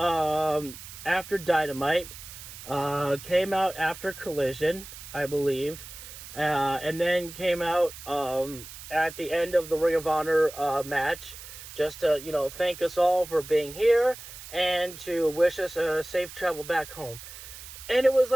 Dynamite, came out after Collision, I believe, and then came out at the end of the Ring of Honor match, just to thank us all for being here and to wish us a safe travel back home. And it was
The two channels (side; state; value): right; noise; hiss, 14 dB below the sound